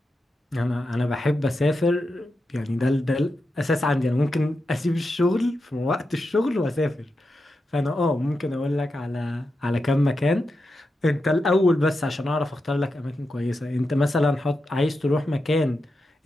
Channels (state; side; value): normal; both; correlation 0.88